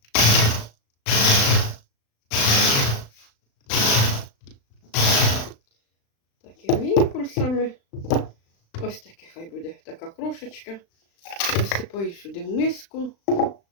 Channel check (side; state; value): right; late; 36 ms